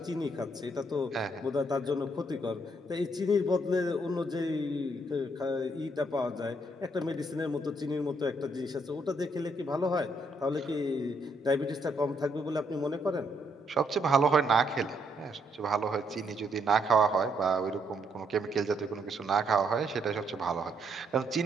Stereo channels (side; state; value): both; normal; correlation 0.73